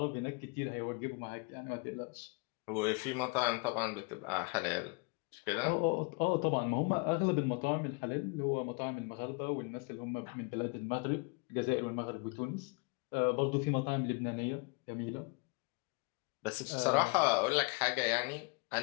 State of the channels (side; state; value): right; quieter; 30.5 dB